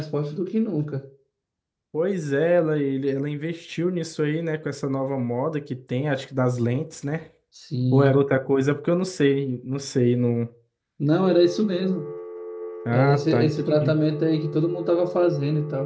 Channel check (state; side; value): identical; both; correlation 1.00